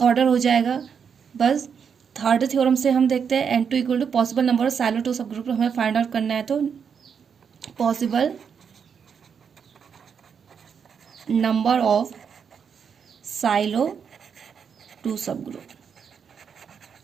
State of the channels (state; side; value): quieter; left; 6.9 dB